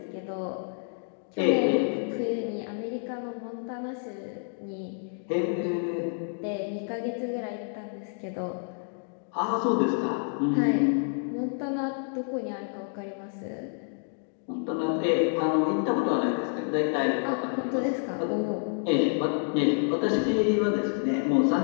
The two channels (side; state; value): right; silent; 57 dB below the other